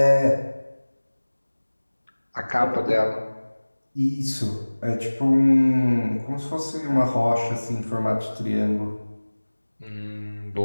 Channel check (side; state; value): both; inverted; correlation -1.00